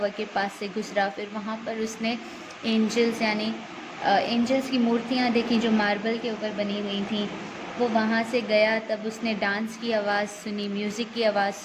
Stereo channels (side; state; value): both; identical; correlation 1.00